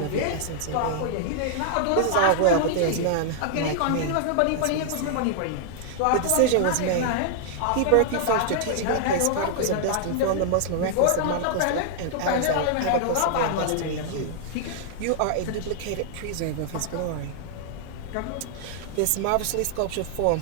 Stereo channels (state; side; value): different; both; correlation -0.01